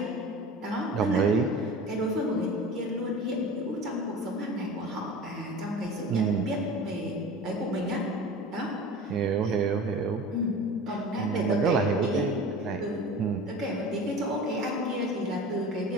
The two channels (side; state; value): both; normal; correlation 0.36